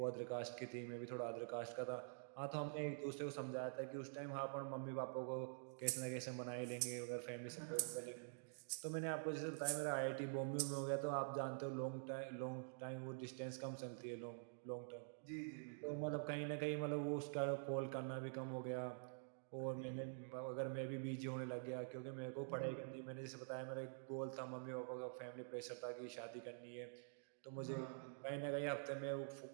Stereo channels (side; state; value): left; silent; digital silence